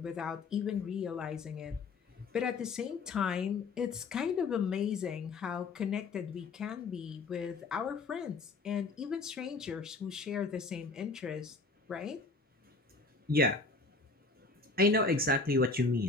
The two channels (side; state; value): right; quieter; 3.8 dB